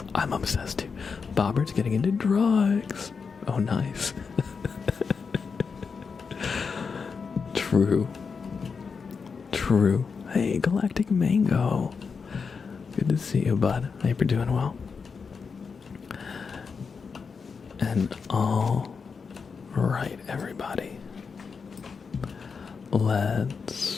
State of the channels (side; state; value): right; quieter; 5.4 dB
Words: I'm obsessed too. Bobbert's getting into drugs. Oh, nice. True. Hey, Galactic Mango. Good to see you, bud. I hope you're doing well. And all right, everybody.